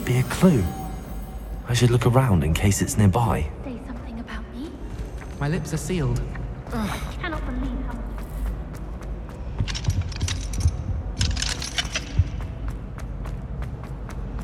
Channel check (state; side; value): identical; both; correlation 1.00